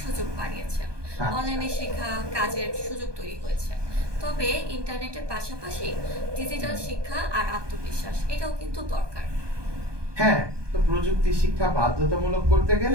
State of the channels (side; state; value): left; late; 1.2 ms